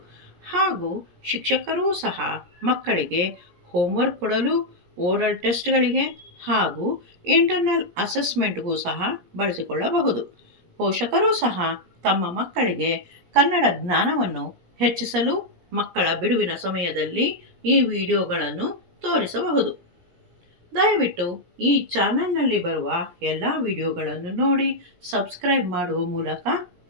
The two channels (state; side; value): late; left; 17 ms